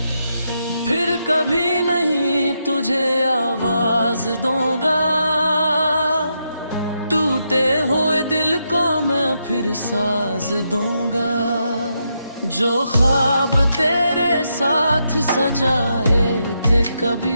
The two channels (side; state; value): both; inverted; correlation -0.82